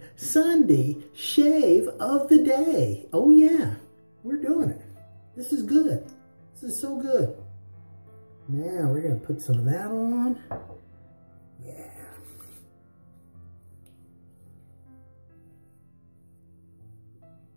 Sunday shave of the day. Oh yeah, we're doing it. This is good. This is so good. Now we're going to put some of that on. Yeah.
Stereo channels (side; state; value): both; inverted; correlation -1.00